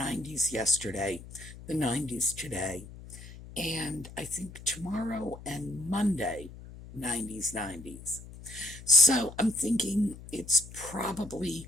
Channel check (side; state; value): left; noise; hum, 15 dB below the sound